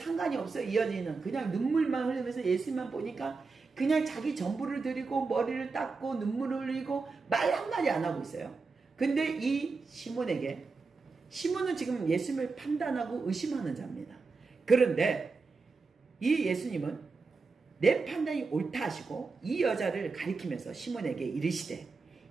없어요. 이 여자는 그냥 눈물만 흘리면서 예수님만 보니까 그냥 자기 전부를 드리고 머리를 닦고 눈물을 흘리고 말 한마디 안 하고 있어요. 근데 이 시몬은 지금 예수님을 판단하고 의심하는 자입니다. 그런데 이 예수님은 내 판단이 옳다 하시고 이 여자를 가리키면서 시몬에게 이르시되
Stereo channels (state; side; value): quieter; left; 4.4 dB